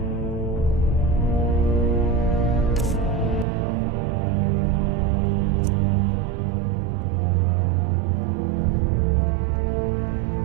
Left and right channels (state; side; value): drops out; left; at 3.5 s